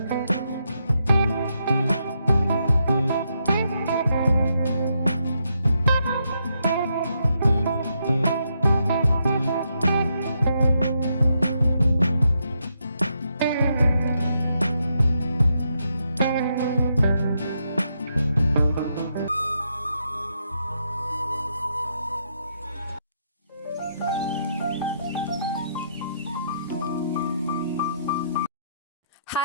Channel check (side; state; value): both; inverted; correlation -0.79